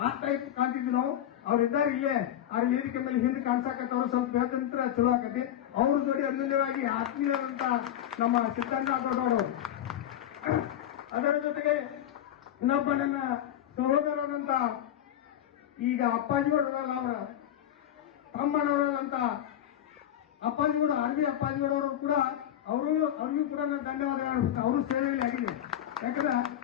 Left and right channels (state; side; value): quieter; right; 11.3 dB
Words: ಆ ಟೈಪ್ ಕಾಣ್ತಿದ್ವಿ ನಾವು. ಅವ್ರಿದ್ದಾರೆ ಇಲ್ಲೇ ಅವ್ರ ವೇದಿಕೆ ಮೇಲೆ ಹಿಂದೆ ಕಾಣಿಸಾಕತ್ತವ್ರು, ಸ್ವಲ್ಪ ಹೇಳ್ತಂತ್ರ ಚಲೋ ಆಕತಿ. ಅವ್ರ ಜೋಡಿ ಅನ್ಯೂನ್ಯವಾಗಿ ಆತ್ಮೀಯರಂತ ನಮ್ಮ ಸಿದ್ದಣ್ಣ ಕೊಟ್ಟವರು. ಅದರ ಜೊತೆಗೆ ಇನ್ನೊಬ್ಬ ನನ್ನ ಸಹೋದರರಂತ ಈಗ ಅಪ್ಪಾಜಿಗೌಡರಲ್ಲ ಅವರ ತಮ್ಮನವರಲ್ಲಂತ ಅಪ್ಪಾಜಿಗೌಡ ಆರ್ಮಿ ಅಪ್ಪಾಜಿಗೌಡವರು ಕೂಡ ಅವ್ರಿಗೂ ಕೂಡ ನಾನು ಧನ್ಯವಾದ ಹೇಳ್ಬಿಟ್ಟು ಅವರು ಸೇವೆಯಲ್ಲಿ ಆಗಿದೆ. ಯಾಕಂದ್ರೆ